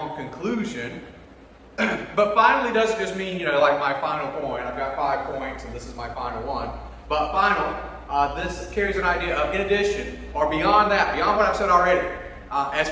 conclusion. But finally doesn't just mean, like my final point. I've got 5 points and this is my final one. But final, this carries an idea of in addition, or beyond that, beyond what I've said already, as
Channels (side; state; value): both; identical; correlation 1.00